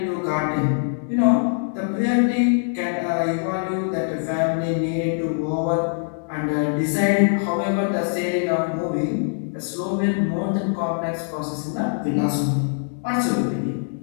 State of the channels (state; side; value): silent; right; 63 dB below the other